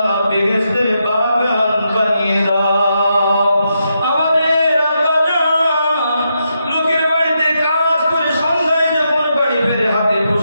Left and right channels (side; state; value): both; inverted; correlation -0.83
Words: বেহেশতের বাগান বানিয়ে দাও। আমাদের আব্বাজান লোকের বাড়িতে কাজ করে সন্ধ্যায় যখন বাড়ি ফেরে হাতে